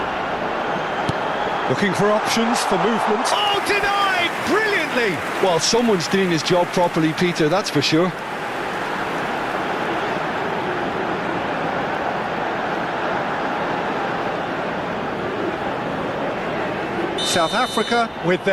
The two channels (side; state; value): both; identical; correlation 1.00